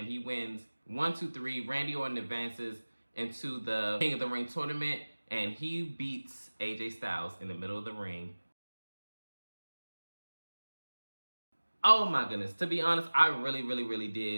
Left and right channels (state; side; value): inverted; both; correlation -1.00